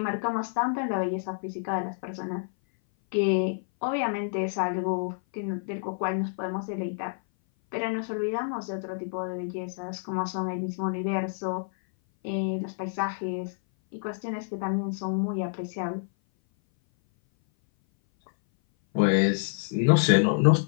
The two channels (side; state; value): right; silent; 57 dB below the other